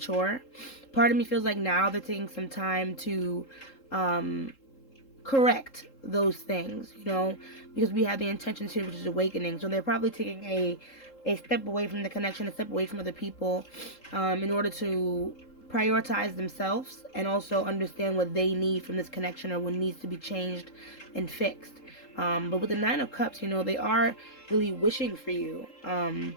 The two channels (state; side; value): late; right; 3.8 ms